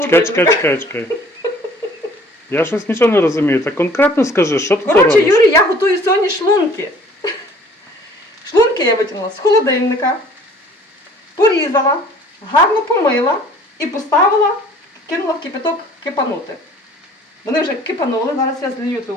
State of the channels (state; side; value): normal; both; correlation 0.53